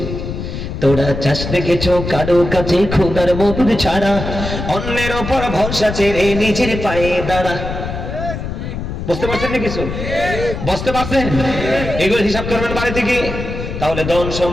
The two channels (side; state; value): left; noise; rumble, 6 dB below the sound